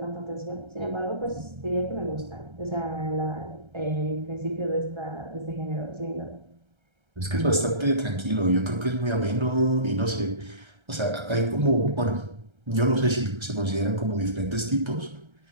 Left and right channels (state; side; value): late; left; 1.3 ms